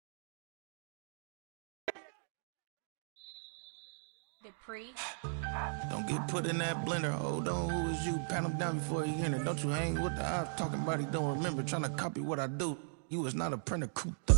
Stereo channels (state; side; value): silent; left; digital silence